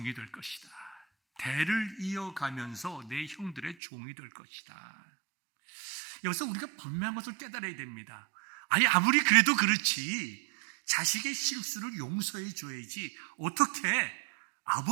될 것이다. 대를 이어가면서 내 형들의 종이 될 것이다. 여기서 우리가 분명한 것을 깨달아야 됩니다. 아무리 그래도 그렇지 자식의 실수를 용서해 줘야지 어떻게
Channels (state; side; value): drops out; left; at 3.8 s